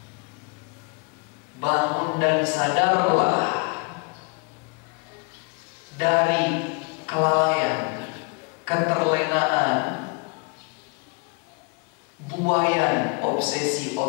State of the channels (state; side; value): quieter; right; 33.2 dB